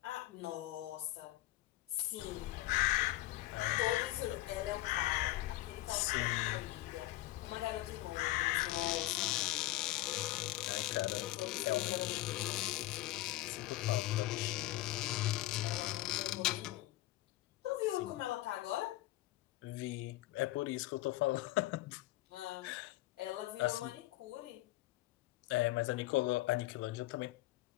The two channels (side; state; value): right; quieter; 16.9 dB